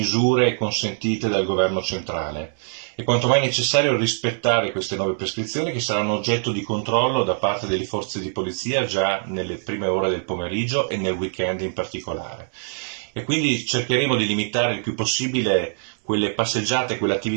consentite dal governo centrale. È quanto mai necessario rispettare queste nuove prescrizioni che saranno oggetto di controllo da parte delle forze di polizia già nelle prime ore del pomeriggio e nel weekend in particolare. E quindi cercheremo di limitare il più possibile quelle passeggiate,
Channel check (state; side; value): silent; left; 63 dB below the other